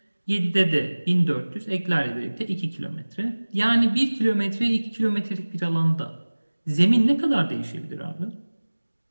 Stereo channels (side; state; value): both; inverted; correlation -1.00